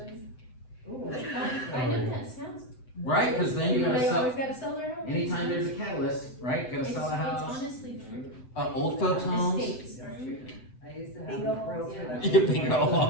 I know that sounds. right, cause then you gotta They sell, always gotta sell their home. anytime there's a catalyst, right, gotta It's sell a house, honestly true. old folks homes. Estates. I used to have Bingo a realtor that. Yeah, bingo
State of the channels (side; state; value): right; late; 7.8 ms